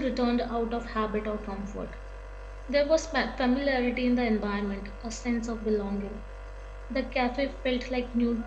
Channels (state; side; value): identical; both; correlation 1.00